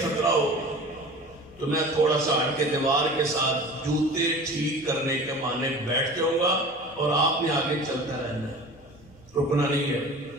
خطرہ ہو تو میں تھوڑا سا ہٹ کے دیوار کے ساتھ جوتے ٹھیک کرنے کے معنی بیٹھ جاؤں گا اور آپ نے آگے چلتا رہنا ہے، رکنا نہیں ہے،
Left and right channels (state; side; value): noise; right; hum, 28 dB below the sound